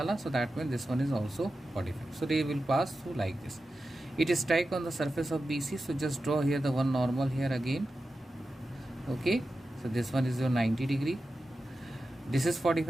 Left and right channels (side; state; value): both; normal; correlation 0.92